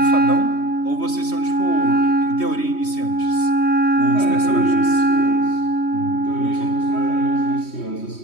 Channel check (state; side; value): late; right; 3.2 ms